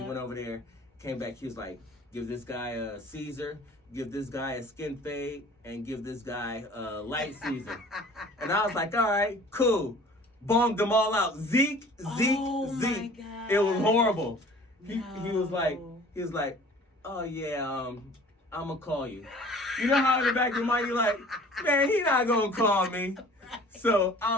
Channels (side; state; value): both; normal; correlation 0.48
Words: went over there, came back, he was like, give this guy a Caesar, give this guy a skin fade, and give this guy a light Caesar. And I was like, all right, cool. Bombed them all out. Zeke. My God. It was horrible. He was like, oh yeah, I'm gonna call you. You know how in the back of your mind you're like, man, he not gonna call me. So